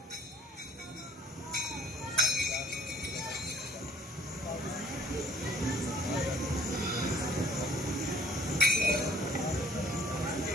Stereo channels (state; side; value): normal; both; correlation 0.57